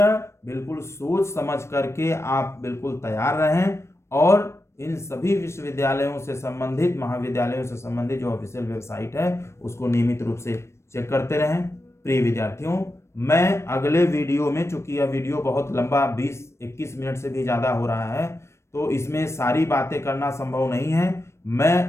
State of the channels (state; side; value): late; right; 0.13 ms